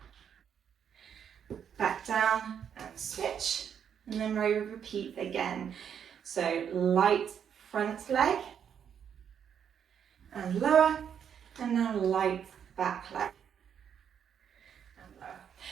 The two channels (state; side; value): quieter; left; 8.2 dB